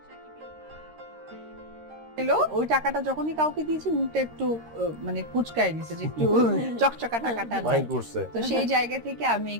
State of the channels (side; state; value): left; late; 13 ms